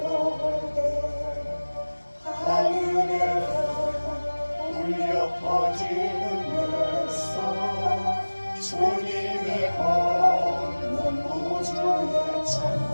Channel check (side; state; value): both; inverted; correlation -1.00